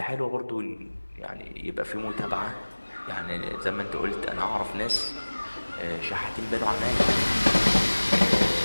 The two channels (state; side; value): inverted; both; correlation -1.00